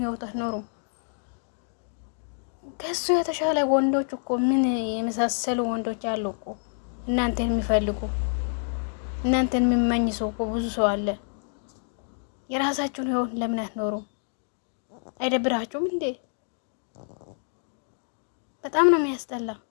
ህይወት አትኖሩም? ከሱ የተሻለ ወንዶች እኮ ምን የመሳሰሉ ወንዶች አሉ እኮ እናንተን የሚፈልጉ እናንተን የሚመኝ ሰው እኮ ብዙ ሰው አለ። የራሳችሁን ህይወት ለምን አትኖሩም? አይደብራችሁም እንዴ? በጣም ነው የሚያስጠላ።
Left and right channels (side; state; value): right; silent; digital silence